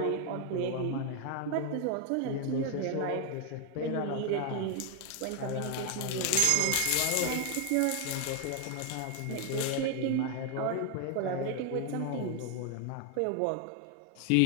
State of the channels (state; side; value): different; both; correlation 0.01